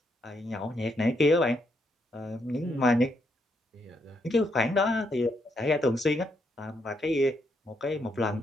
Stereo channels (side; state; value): both; normal; correlation 0.77